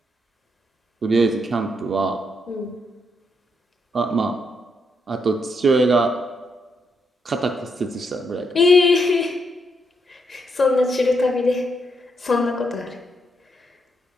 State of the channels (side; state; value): both; normal; correlation 0.78